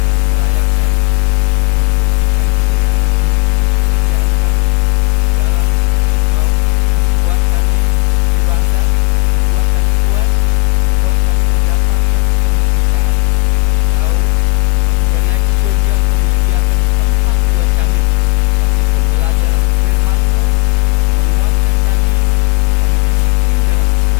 Kami merayakan, kami membuktikan sebagai anak-anak-Mu kesetiaan kami di dalam mencari Engkau, membuat kami lebih dewasa, membuat kami kuat, membuat kami mendapatkan kemerdekaan. Kami tahu Engkau sudah naik ke surga, Engkau menyediakan tempat buat kami. Tapi pembelajaran firman-Mu untuk menguatkan kami, untuk kami disiplin dalam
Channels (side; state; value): right; quieter; 26.3 dB